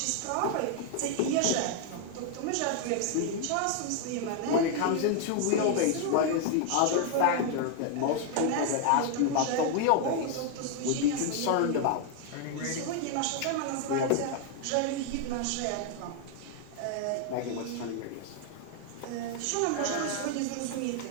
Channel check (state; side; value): different; both; correlation 0.00